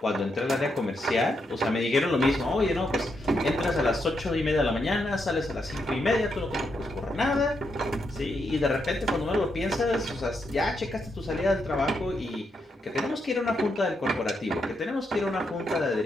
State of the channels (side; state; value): both; normal; correlation 0.81